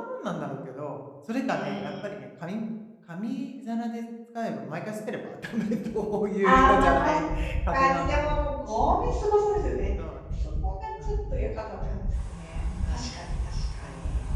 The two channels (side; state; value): both; identical; correlation 1.00